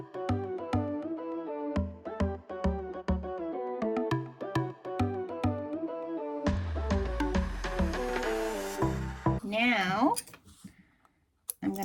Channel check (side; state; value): both; identical; correlation 1.00